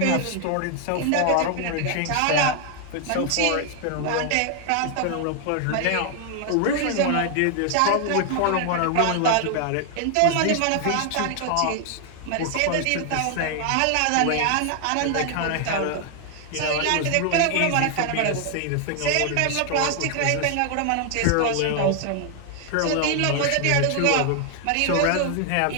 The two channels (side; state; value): both; different; correlation 0.00